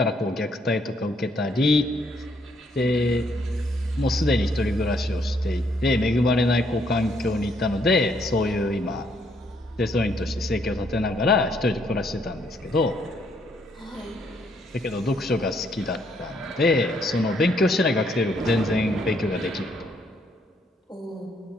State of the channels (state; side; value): normal; both; correlation 0.70